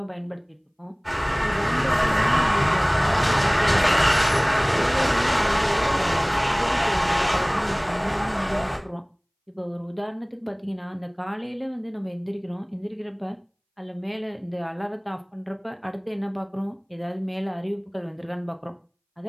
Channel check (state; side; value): identical; both; correlation 1.00